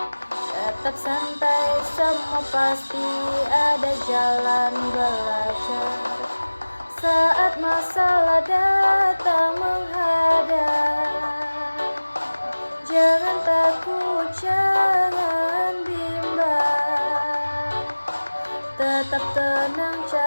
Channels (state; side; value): inverted; both; correlation -1.00